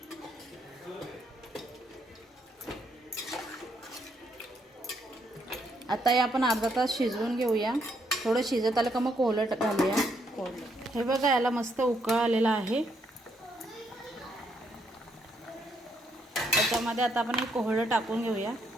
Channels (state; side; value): normal; both; correlation 0.74